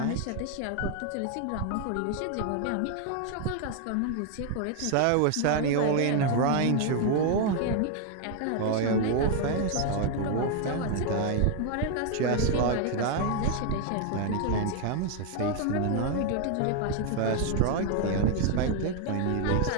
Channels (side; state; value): both; different; correlation 0.01